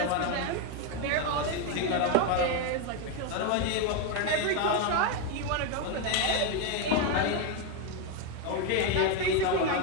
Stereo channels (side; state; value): both; different; correlation 0.02